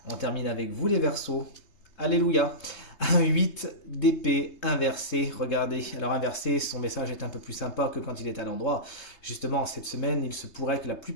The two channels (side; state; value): right; late; 3.2 ms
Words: On termine avec vous, les Verseaux. Alléluia. Un 8 d'épée inversé. Regardez, alors inversé, son message est un peu plus sympa que quand il est à l'endroit. Justement, cette semaine, il se pourrait que la